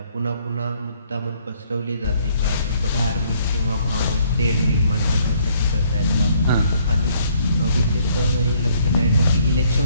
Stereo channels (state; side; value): inverted; both; correlation -0.65